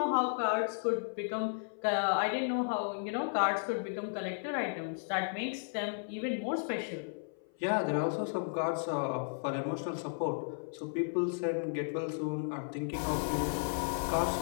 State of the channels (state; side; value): silent; right; 55 dB below the other